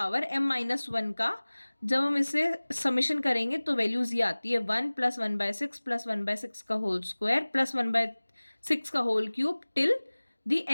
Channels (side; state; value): both; inverted; correlation -1.00